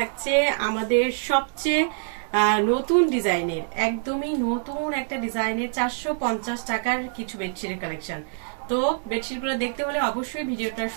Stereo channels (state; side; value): silent; left; digital silence